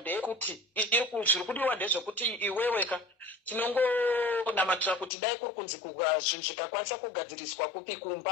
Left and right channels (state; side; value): drops out; right; at 5.1 s